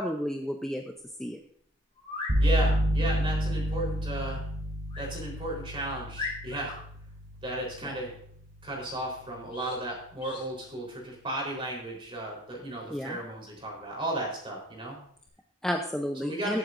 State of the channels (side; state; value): both; normal; correlation 0.60